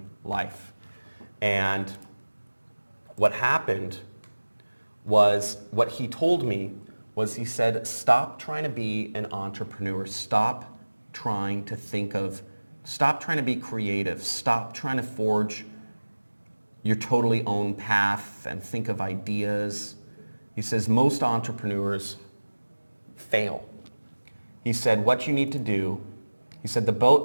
life. And what happened was, what he told me was, he said, stop trying to be an entrepreneur. Stop trying to be creative. Stop trying to forge your totally own path and think of ideas. He says most entrepreneurs fail. He said what you need to do, he said the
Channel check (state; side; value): inverted; both; correlation -1.00